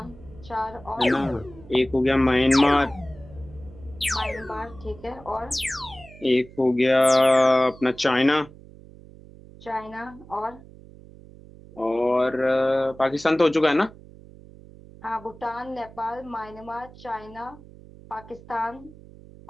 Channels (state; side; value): noise; right; hum, 20 dB below the sound